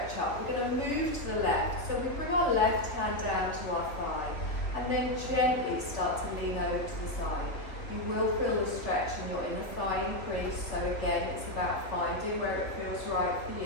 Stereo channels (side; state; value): right; late; 3.2 ms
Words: up. We're going to move to the left. So we bring our left hand down to our thigh. And then gently start to lean over to the side. You will feel the stretch in your inner thigh increase, so again it's about finding where it feels right for